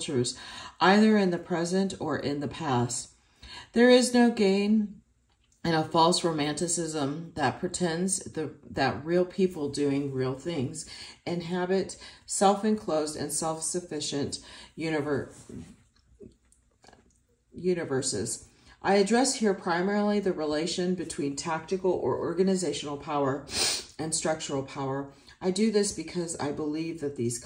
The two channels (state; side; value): identical; both; correlation 1.00